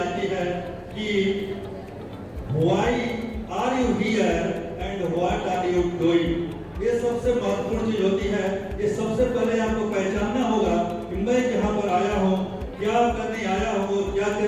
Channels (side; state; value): both; identical; correlation 1.00